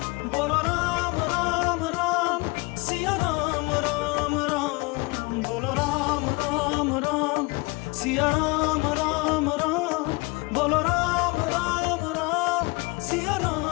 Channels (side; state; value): right; quieter; 25.9 dB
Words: बोलो राम राम राम, सिया राम राम राम। बोलो राम राम राम, सिया राम राम राम। बोलो राम राम राम, सिया